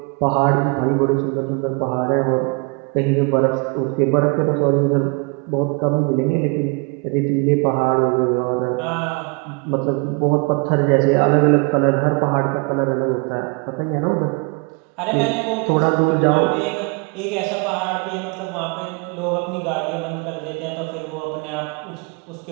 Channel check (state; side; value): quieter; left; 30.3 dB